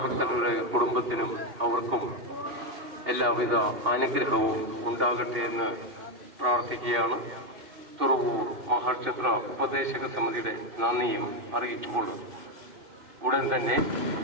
ഭക്തരുടെ കുടുംബത്തിനും അവർക്കും എല്ലാവിധ അനുഗ്രഹവും ഉണ്ടാകട്ടെ എന്ന് പ്രാർത്ഥിക്കുകയാണ്. തുറവൂർ മഹാക്ഷേത്ര ഉപദേശക സമിതിയുടെ നന്ദിയും അറിയിച്ചുകൊള്ളുന്നു. ഉടൻ തന്നെ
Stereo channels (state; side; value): late; left; 2.8 ms